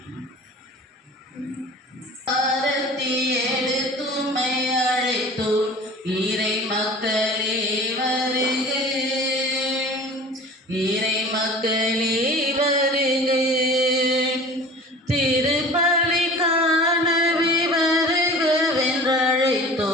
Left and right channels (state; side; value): normal; both; correlation 0.41